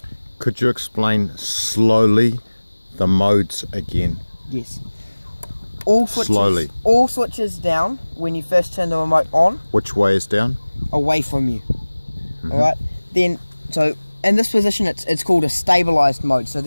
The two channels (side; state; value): both; inverted; correlation -1.00